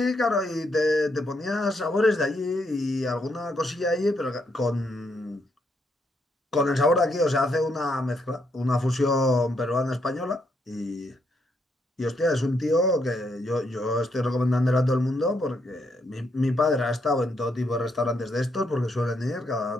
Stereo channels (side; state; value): both; normal; correlation 0.76